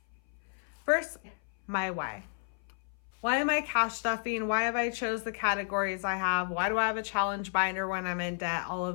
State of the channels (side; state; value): right; silent; 56 dB below the other